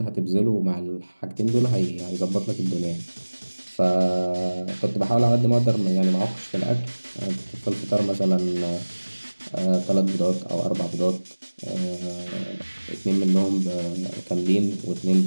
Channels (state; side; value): inverted; both; correlation -1.00